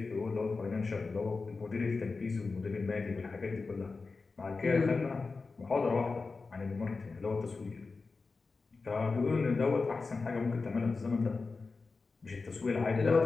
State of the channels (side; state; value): right; quieter; 4.2 dB